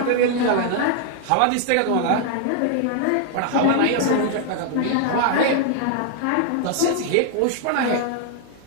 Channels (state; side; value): different; both; correlation 0.00